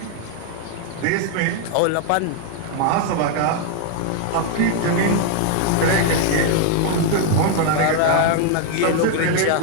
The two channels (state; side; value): different; both; correlation 0.00